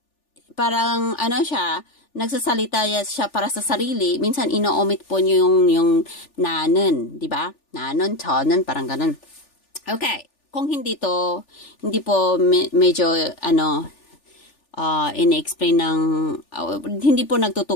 parang, siya, nagsasalita siya para sa sarili, minsan ino-omit po niyo yung nanen, di ba? Nanon, 저는, parang ganun. Okay, kung hindi po medyo, in-explain ng, hindi po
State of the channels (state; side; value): late; right; 3.4 ms